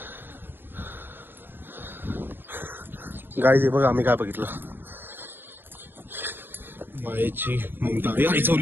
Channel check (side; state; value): left; late; 0.097 ms